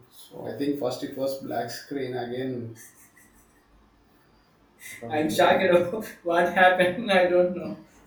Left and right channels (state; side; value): identical; both; correlation 1.00